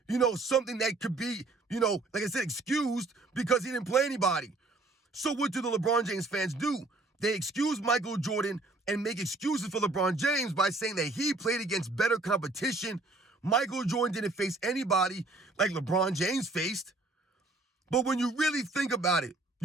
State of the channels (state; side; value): quieter; left; 3.1 dB